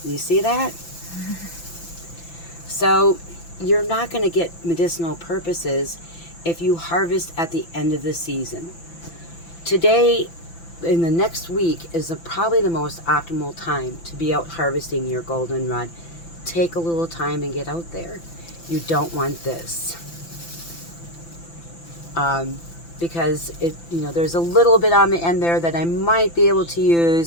You see that? So you're not going to get medicinal purposes if you harvest at the end of the season. Today, in the next week, is probably the most optimal time to be out harvesting your goldenrod. Take a little time and get out there. You don't want this. Because there's a little bit on the end there that I might be able to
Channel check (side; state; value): right; late; 5.9 ms